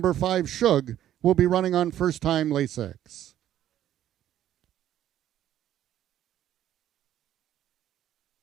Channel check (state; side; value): quieter; left; 11.8 dB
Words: 5, Shug, will be running on first-time Lasix.